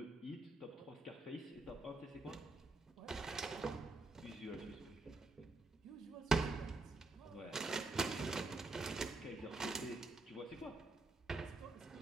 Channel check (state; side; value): quieter; left; 3.2 dB